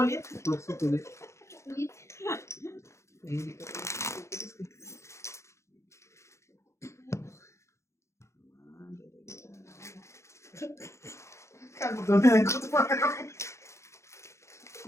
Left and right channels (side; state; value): right; late; 0.14 ms